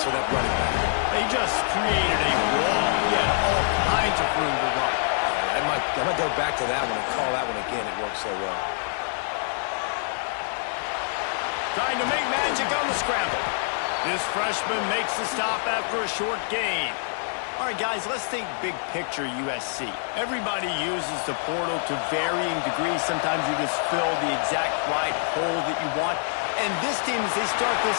for that running back. They just created a wall. He had all kinds of room to run. Yeah, I might go back to that one and call that one again. It worked so well. Trying to make magic on the scramble. This freshman makes the stop after a short gain. All right, guys, let's think big picture USC. Everybody uses the portal to varying degrees. Sometimes you just fill the exact right hole that you want. And this team, as they start this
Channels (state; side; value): silent; right; 56 dB below the other